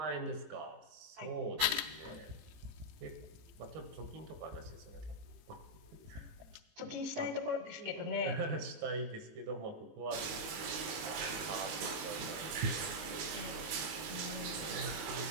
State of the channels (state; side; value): late; left; 19 ms